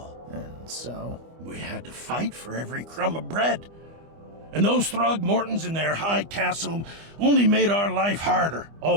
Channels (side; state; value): left; late; 25 ms